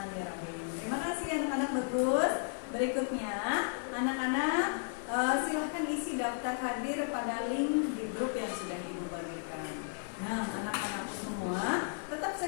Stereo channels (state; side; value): silent; right; 55 dB below the other